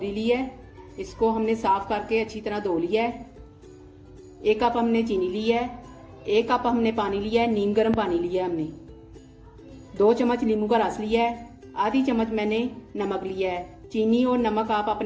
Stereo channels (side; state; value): both; identical; correlation 1.00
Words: ली है। इसको हमने साफ़ करके अच्छी तरह धो लिया है। 1 कप हमने चीनी ली है। 1 कप हमने पानी लिया है, नीम गर्म पानी लिया है हमने। 2 चम्मच नींबू का रस लिया है। आधी चम्मच मैंने नमक लिया है। चीनी और नमक आप